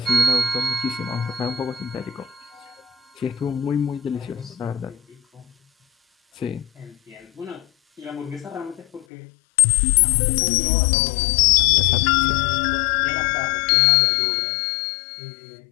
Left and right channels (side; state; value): right; drops out; at 9.1 s